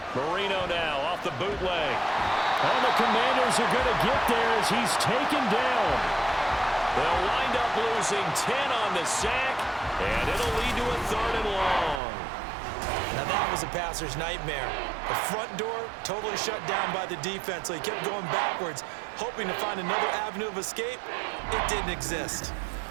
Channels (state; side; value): drops out; left; at 12.0 s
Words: Marino now off the bootleg. And the Commanders are going to get there as he's taken down. They'll wind up losing 10 on the sack, and it'll lead to a 3rd and long. Now that was a passer's nightmare. The front door totally shut down by the defense, so he kept going backwards, hoping to find another avenue of escape. It didn't exist.